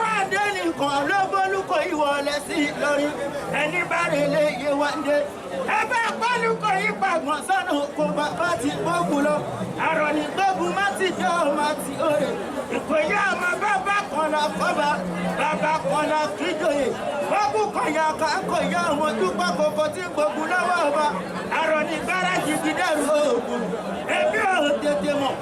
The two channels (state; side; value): identical; both; correlation 1.00